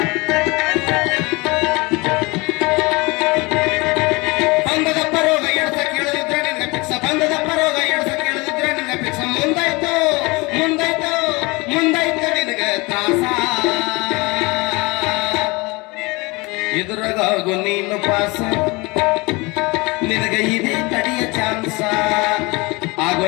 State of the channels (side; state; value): right; quieter; 25.2 dB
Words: ಬಂದದಪ್ಪ ರೋಗ ಎಡ್ಸ ಕೇಳದಿದ್ರೆ ನಿನ್ಗೆ ಪಿಕ್ಸ ಬಂದದಪ್ಪ ರೋಗ ಎಡ್ಸ ಕೇಳದಿದ್ರೆ ನಿನ್ಗೆ ಪಿಕ್ಸ ಮುಂದಾಯ್ತು ಮುಂದಾಯ್ತು ಮುಂದಾಯ್ತು ನಿನಗೆ ತ್ರಾಸ ಇದ್ರಾಗು ನೀನು ಪಾಸ ನಿನಗ ಇದೇ ಕಡಿಯ ಚಾನ್ಸ ಆಗೋ